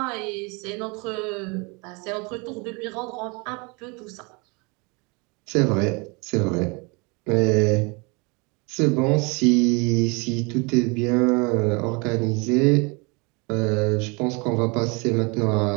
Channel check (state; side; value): quieter; left; 29.6 dB